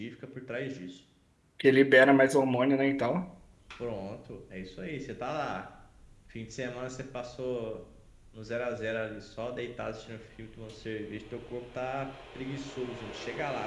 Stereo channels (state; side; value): identical; both; correlation 1.00